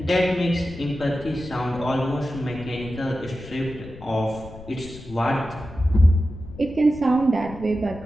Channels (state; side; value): noise; left; rumble, 16 dB below the sound